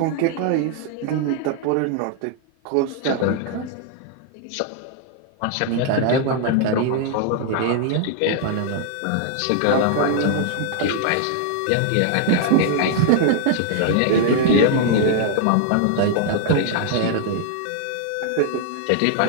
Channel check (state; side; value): different; both; correlation 0.00